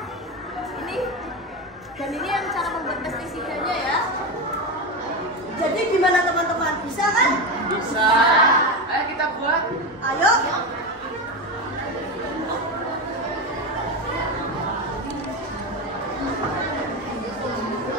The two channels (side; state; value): both; normal; correlation 0.17